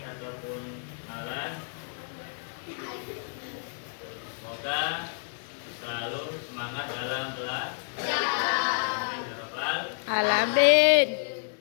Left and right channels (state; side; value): silent; right; 58 dB below the other